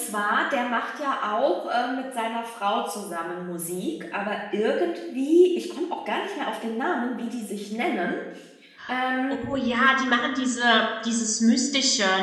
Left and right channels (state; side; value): identical; both; correlation 1.00